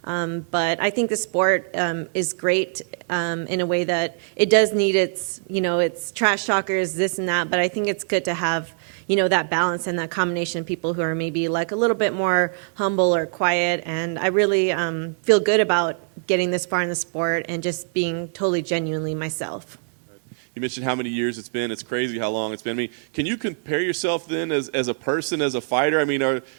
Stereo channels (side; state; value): left; silent; digital silence